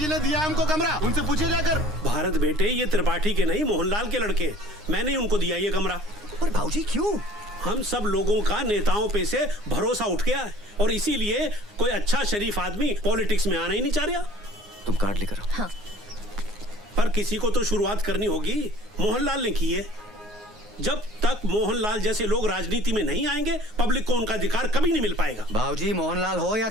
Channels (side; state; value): both; normal; correlation 0.49